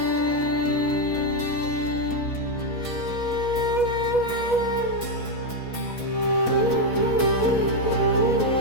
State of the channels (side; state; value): right; late; 4.1 ms